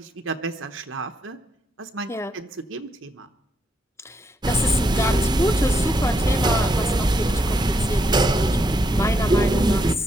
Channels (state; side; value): normal; both; correlation 0.78